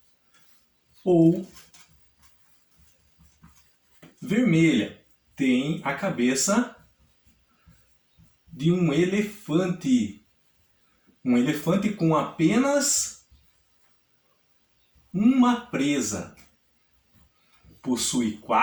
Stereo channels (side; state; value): both; identical; correlation 1.00